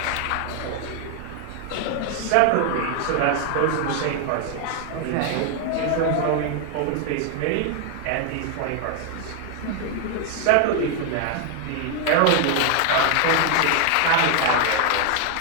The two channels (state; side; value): different; both; correlation 0.00